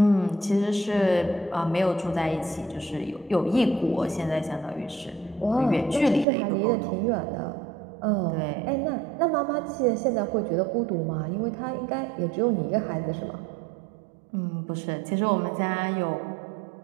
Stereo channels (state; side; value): drops out; left; at 6.2 s